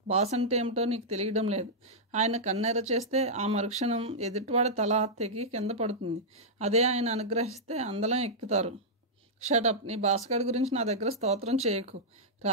బాస్ అంటే ఏమిటో నీకు తెలియడం లేదు. ఆయన కన్నెర చేస్తే ఆ మరుక్షణం ఎదుటివాడి తల తెగి కింద పడుతుంది. అదే ఆయన అనుగ్రహిస్తే అందలం ఎక్కుతారు. షటప్. నీ బాస్గాడి గురించి నా దగ్గర స్తోత్రం చేయకు.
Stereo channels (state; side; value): normal; both; correlation -0.10